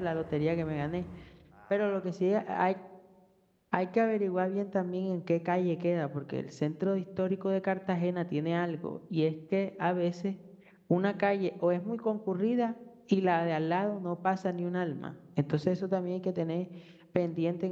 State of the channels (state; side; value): identical; both; correlation 1.00